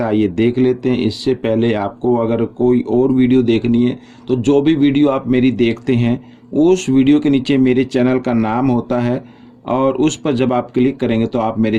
है ये देख लेते हैं। इससे पहले आपको अगर कोई और वीडियो देखनी है तो जो भी वीडियो आप मेरी देखते हैं उस वीडियो के नीचे मेरे चैनल का नाम होता है और उस पर जब आप क्लिक करेंगे तो आप मेरे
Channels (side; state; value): both; identical; correlation 1.00